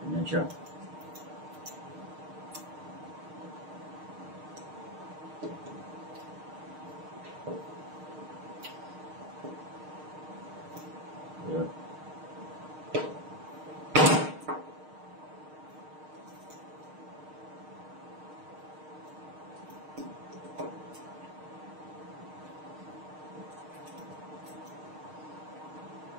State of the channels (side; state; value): left; late; 6.5 ms